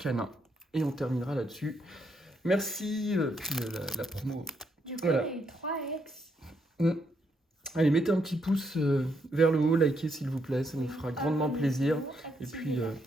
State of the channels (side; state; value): both; normal; correlation 0.77